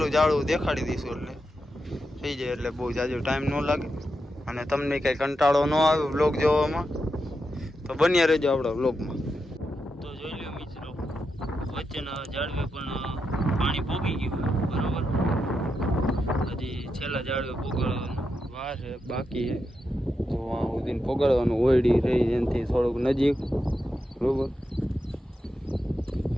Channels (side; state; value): both; normal; correlation 0.86